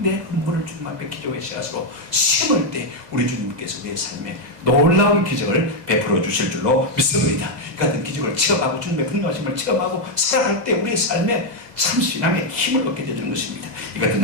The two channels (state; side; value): late; left; 2.0 ms